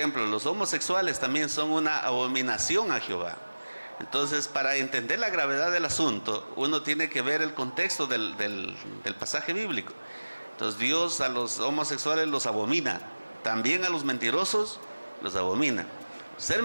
los homosexuales también son una abominación a Jehová. Entonces, para entender la gravedad del asunto, uno tiene que ver el contexto del pasaje bíblico. Entonces, Dios a los homosexuales los abomina, también a los mentirosos los abomina. Ser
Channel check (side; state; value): both; inverted; correlation -1.00